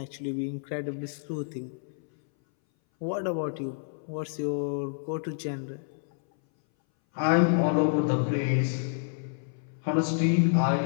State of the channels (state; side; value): silent; right; 59 dB below the other